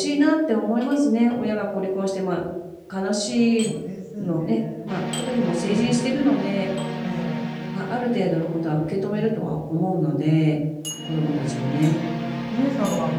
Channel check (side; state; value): both; identical; correlation 1.00